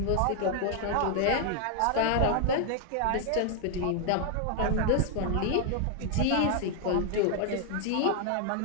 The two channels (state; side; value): different; both; correlation 0.00